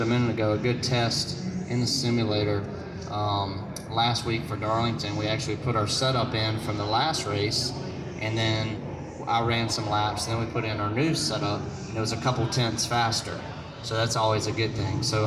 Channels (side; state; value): both; identical; correlation 1.00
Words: a minute ago, a good test in the simulator last week for Darlington. We actually put our setup in from the last race, and then I ran some laps, and then we put in our new setup, and it was a couple tenths faster. So that's always a good thing.